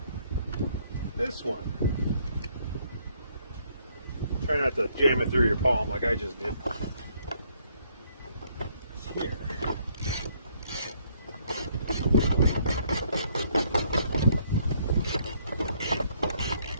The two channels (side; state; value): both; inverted; correlation -0.68